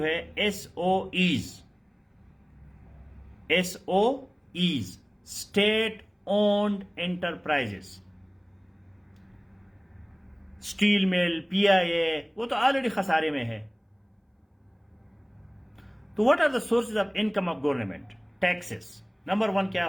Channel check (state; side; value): identical; both; correlation 1.00